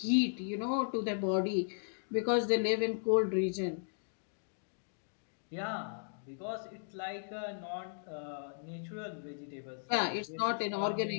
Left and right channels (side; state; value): right; silent; digital silence